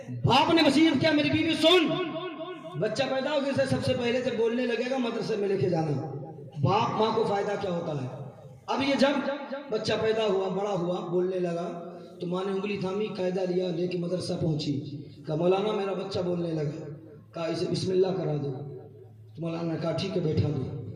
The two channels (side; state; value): both; identical; correlation 1.00